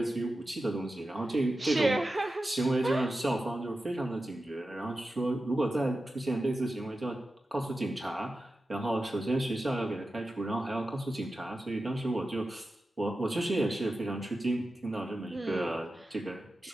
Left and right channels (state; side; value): normal; both; correlation 0.92